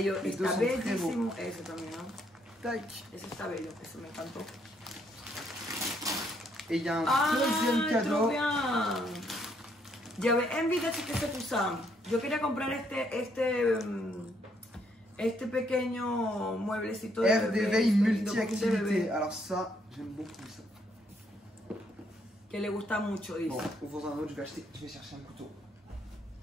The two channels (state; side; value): normal; both; correlation 0.71